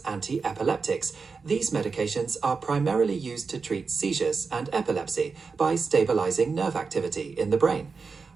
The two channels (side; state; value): left; quieter; 4.8 dB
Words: anti-epileptics, these medications are primarily used to treat seizures and epilepsy by stabilizing nerve activity in the brain.